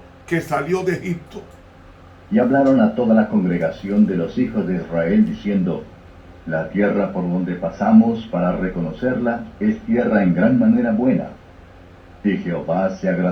que salió de Egipto. Y hablaron a toda la congregación de los hijos de Israel, diciendo, la tierra por donde pasamos para reconocerla es tierra en gran manera buena. Si Jehová se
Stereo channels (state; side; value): identical; both; correlation 1.00